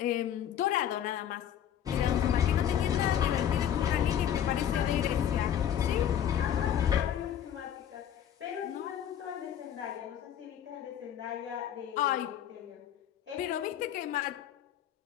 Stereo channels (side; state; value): right; quieter; 9.9 dB